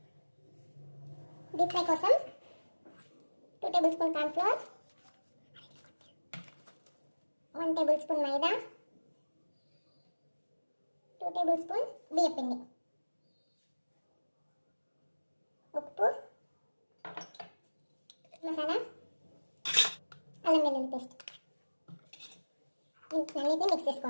డీప్ ఫ్రై కోసం 2 table spoon corn flour, 1 table spoon మైదా, 2 టేబుల్ స్పూన్ బియ్యం పిండి, ఉప్పు, మసాలా, అల్లం వెల్లుల్లి పేస్ట్ అన్నిటిని మిక్స్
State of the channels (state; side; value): inverted; both; correlation -1.00